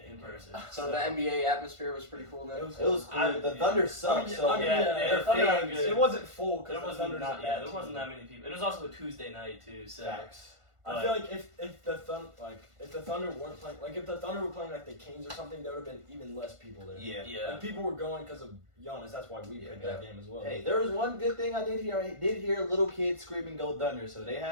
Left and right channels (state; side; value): late; left; 1.5 ms